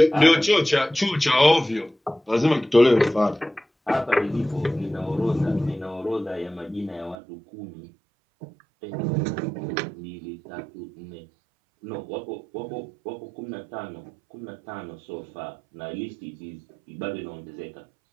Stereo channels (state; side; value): drops out; left; at 7.2 s